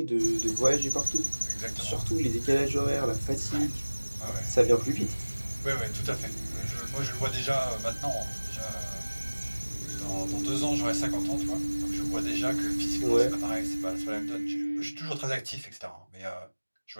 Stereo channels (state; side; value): inverted; both; correlation -1.00